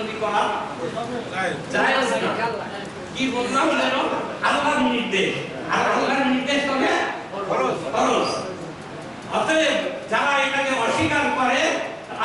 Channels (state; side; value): identical; both; correlation 1.00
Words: করা জায়েজ না। কি বললাম যেন? আল্লাহর নির্দেশ, আর আল্লাহর নির্দেশ হবে ফরজ। অতএব যারা এটাকে অস্বীকার করে,